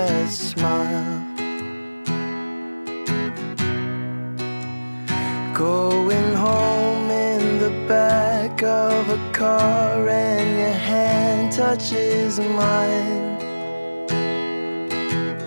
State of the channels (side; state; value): both; inverted; correlation -1.00